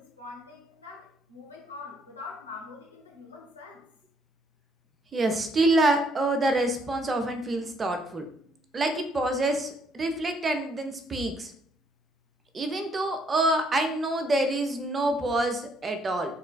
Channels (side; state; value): both; normal; correlation 0.69